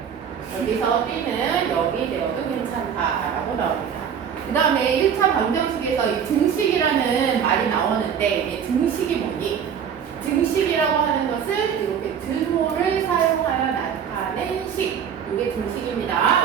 여기서 b는 0이 되어도 괜찮다라고 나옵니다. 그 다음에 1차 방정식에서 이 등식이라는 말이 나오는데 이게 등식이 뭐니? 등식이라고 하는 것은 이렇게 등호를 사용하여 나타낸 식. 이게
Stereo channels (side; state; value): left; quieter; 7.9 dB